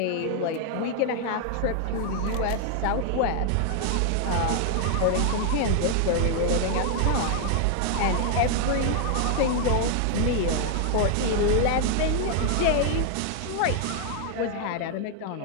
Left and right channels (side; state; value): both; different; correlation 0.00